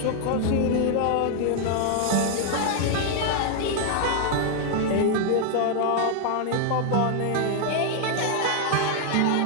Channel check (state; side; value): different; both; correlation 0.00